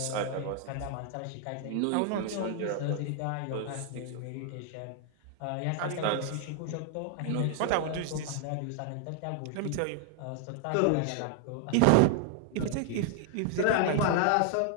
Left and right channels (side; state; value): both; different; correlation 0.00